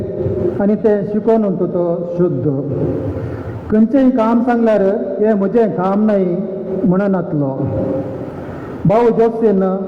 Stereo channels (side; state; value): both; identical; correlation 1.00